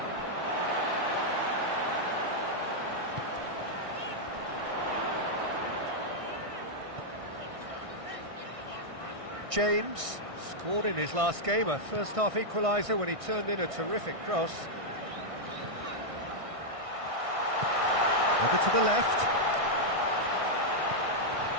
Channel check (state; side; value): late; left; 1.6 ms